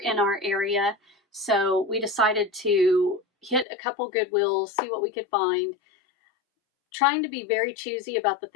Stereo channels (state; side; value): drops out; right; at 3.7 s